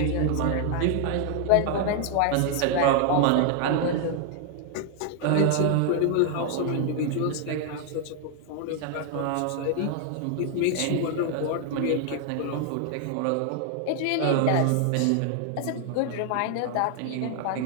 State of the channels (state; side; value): different; both; correlation 0.00